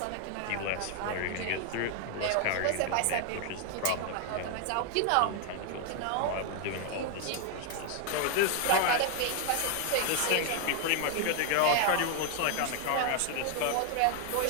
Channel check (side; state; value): both; different; correlation 0.00